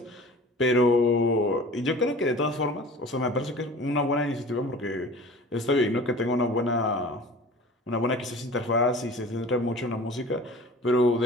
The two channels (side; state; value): both; normal; correlation 0.42